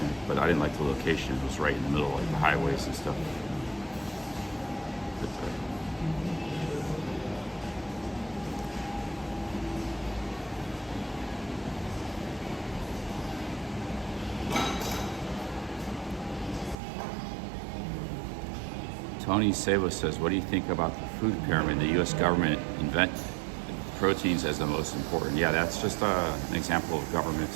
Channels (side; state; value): left; drops out; at 16.8 s